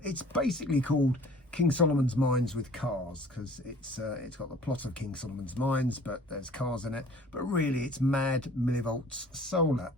it's basically called King Solomon's Mines with Cars, because it's got the plot of King Solomon's Mines, but there's cars in it. But really, it's Mad Millivolts Solar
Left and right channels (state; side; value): normal; both; correlation 0.50